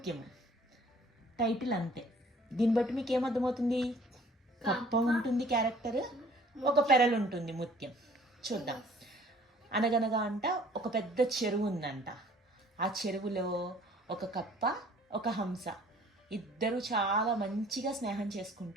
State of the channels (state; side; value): normal; both; correlation 0.54